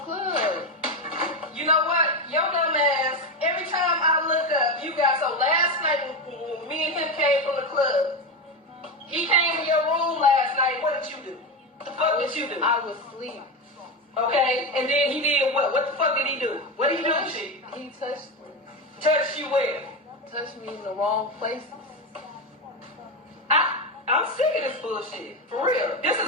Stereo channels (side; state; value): both; normal; correlation 0.16